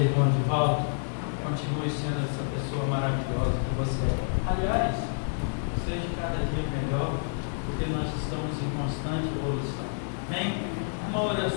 Divaldo. Continue sendo essa pessoa maravilhosa que você é. Aliás, seja cada dia melhor, porque nós estamos em constante evolução. Amém? Uma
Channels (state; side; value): silent; right; digital silence